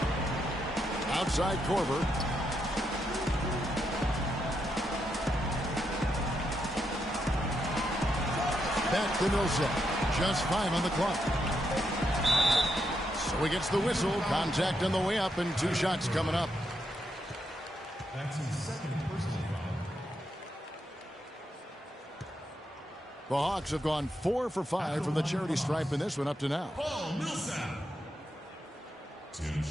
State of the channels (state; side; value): normal; both; correlation 0.81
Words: Outside Korver. Back to Millsap. Just 5 on the clock. So he gets the whistle. Contact on the way up and 2 shots coming up. That's his second personal foul. The Hawks have gone 4 for 5 from the charity stripe in this one up to now. Paul Millsap. 2